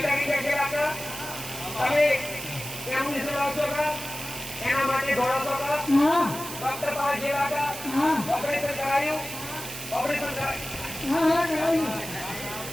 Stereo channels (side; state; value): right; noise; hiss, 9 dB below the sound